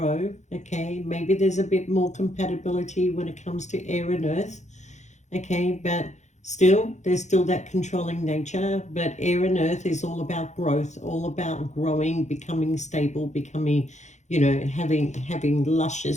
Okay, maybe there's a bit more compatibility when it comes to air and earth. Okay, but still, there's still that controlling nature. But air and earth is all about growth, all about growing, becoming stable, becoming, having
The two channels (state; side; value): late; right; 0.34 ms